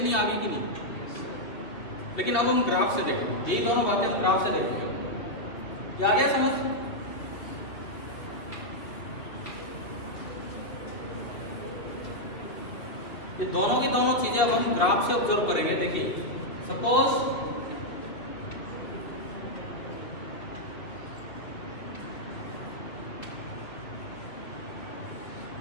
आ गई कि नहीं? लेकिन अब हम ग्राफ से देखेंगे, यही दोनों बातें हम ग्राफ से देखेंगे। क्या आ गया समझ? ये दोनों की दोनों चीजें अब हम ग्राफ से ऑब्जर्व करेंगे। देखिए सपोज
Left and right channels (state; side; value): late; right; 2.7 ms